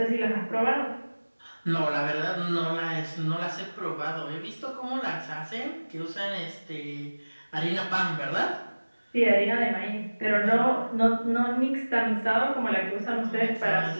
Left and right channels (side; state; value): both; inverted; correlation -1.00